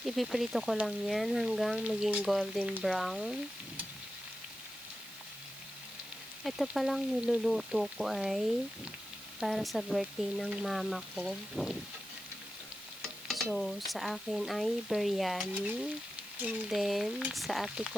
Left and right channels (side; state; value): right; noise; hiss, 16 dB below the sound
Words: Ipiprito ko lang yan hanggang maging golden brown. Ito palang niluluto ko ay para sa birthday ng mama ko. So, sa akin ay biryani. And then, sa ate